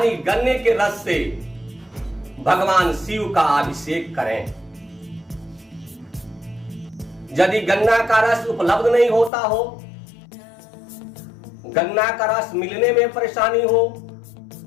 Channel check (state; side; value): drops out; right; at 9.3 s